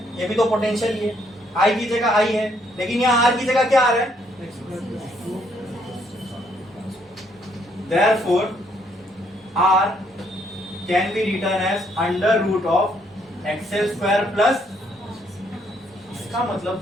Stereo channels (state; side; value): normal; both; correlation 0.70